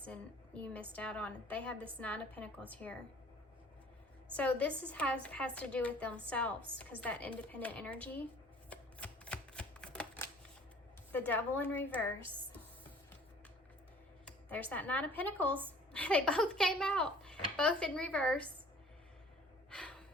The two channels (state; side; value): normal; both; correlation 0.51